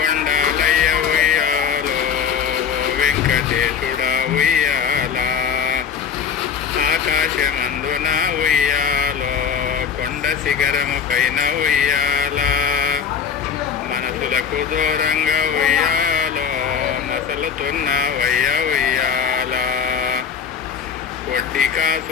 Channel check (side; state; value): right; quieter; 7.2 dB